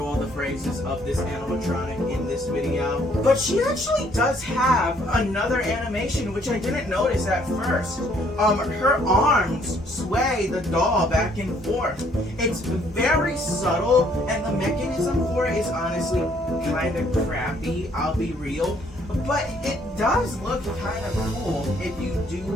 all the phrases of this animatronic in this video. But she actually does have another animation, which I didn't notice at first. Her arms sway the doll back and forth. It's very subtle, and the mechanism for it is honestly kind of crappy, I'll be real. But it does look kind of cool if you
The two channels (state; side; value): normal; both; correlation 0.64